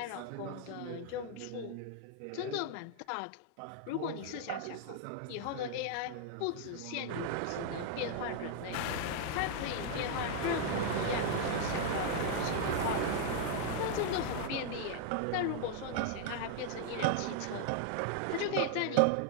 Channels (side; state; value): both; different; correlation 0.00